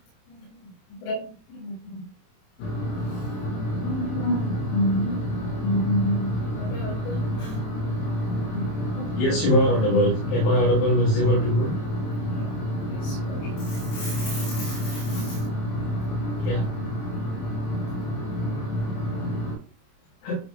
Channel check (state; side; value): late; right; 27 ms